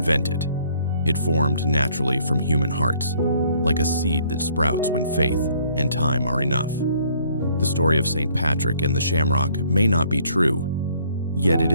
it. It formed naturally from human hearts, like a seed that sprouts when faith and time are enough. The story of St. Patrick and the shamrock may not be true, yet it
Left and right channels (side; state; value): both; inverted; correlation -0.63